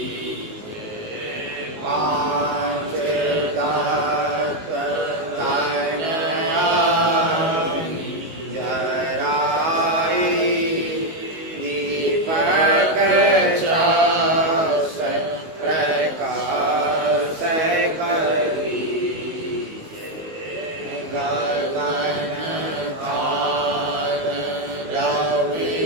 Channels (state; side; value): late; left; 19 ms